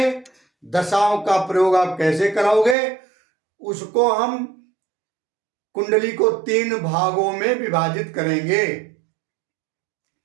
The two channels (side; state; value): left; drops out; at 2.8 s